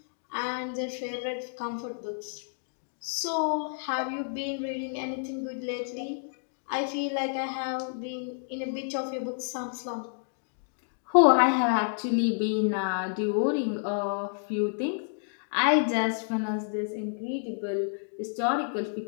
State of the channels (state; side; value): silent; right; digital silence